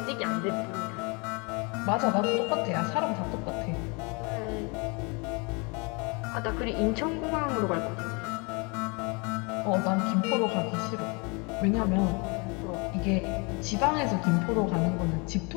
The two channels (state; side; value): quieter; right; 31.1 dB